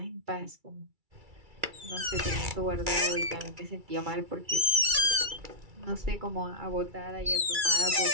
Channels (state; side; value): late; left; 2.3 ms